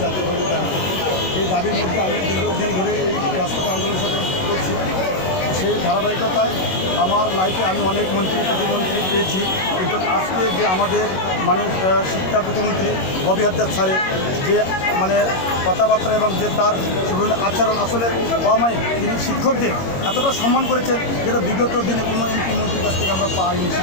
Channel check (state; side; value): late; right; 21 ms